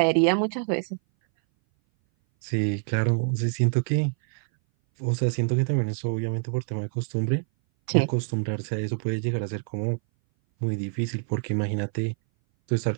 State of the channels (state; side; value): silent; left; 59 dB below the other